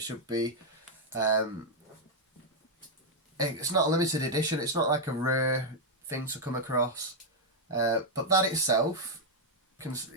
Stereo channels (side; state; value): both; normal; correlation -0.01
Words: should be. It's not a limited edition. It's not like a rare thing to come across, but that itself,